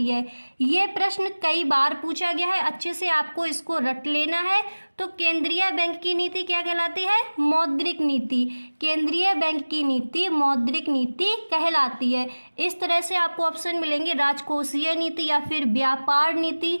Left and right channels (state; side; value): inverted; both; correlation -1.00